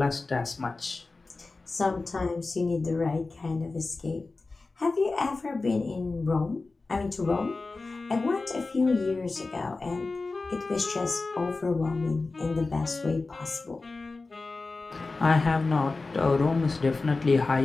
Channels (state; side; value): quieter; right; 3.7 dB